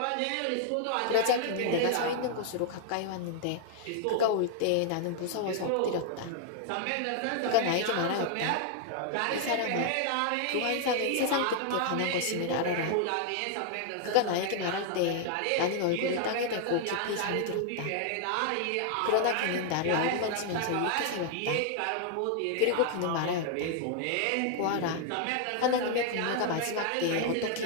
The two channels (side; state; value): both; different; correlation 0.00